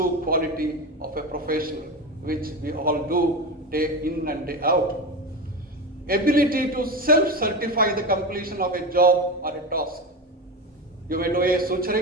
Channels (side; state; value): both; normal; correlation 0.22